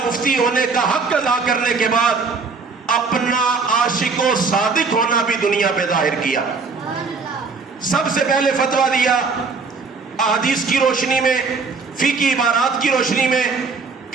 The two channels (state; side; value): quieter; left; 4.6 dB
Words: مفتی ہونے کا حق ادا کرنے کے بعد اپنا عاشق و صادق ہونا بھی دنیا پہ ظاہر کیا۔ سب سے پہلے فتویٰ دیا احادیث کی روشنی میں، فقہی عبارات کی روشنی میں،